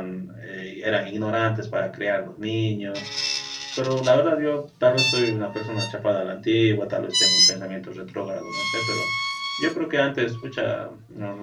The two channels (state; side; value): identical; both; correlation 1.00